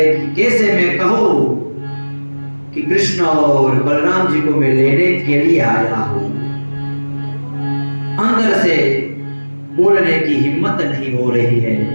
कि कैसे मैं कहूं कि कृष्ण और बलराम जी को मैं लेने के लिए आया हूं। अंदर से बोलने की हिम्मत नहीं हो रही है,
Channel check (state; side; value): inverted; both; correlation -1.00